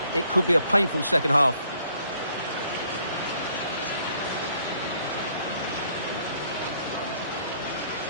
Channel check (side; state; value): both; inverted; correlation -0.65